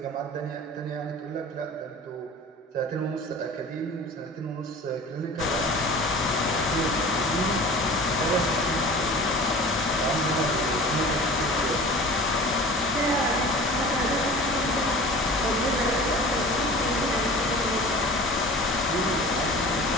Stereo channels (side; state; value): both; normal; correlation 0.40